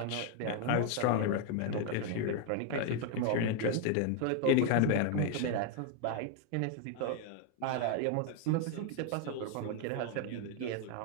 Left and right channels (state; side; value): different; both; correlation 0.00